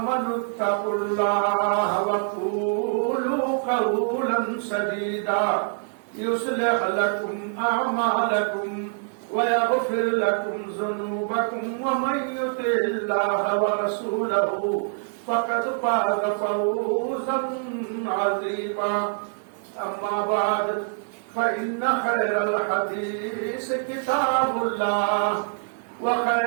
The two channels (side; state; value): left; silent; digital silence